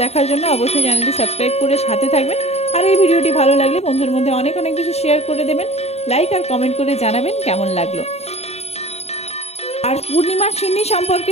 দেখার জন্য অবশ্যই চ্যানেলটি সাবস্ক্রাইব করে সাথে থাকবেন। আর এই ভিডিওটি ভালো লাগলে বন্ধুদের মধ্যে অনেক অনেক বেশি শেয়ার করে দেবেন, লাইক আর কমেন্ট করে জানাবেন কেমন লাগলো। আর পূর্ণিমার সিন্নি সম্পর্কে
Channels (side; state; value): right; late; 0.31 ms